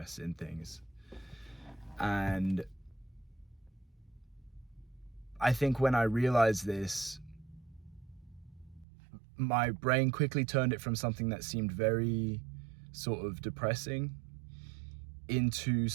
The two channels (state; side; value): drops out; left; at 8.8 s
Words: in things. And I think when I realized this, my brain quickly turned it from something that seemed very sort of depressing into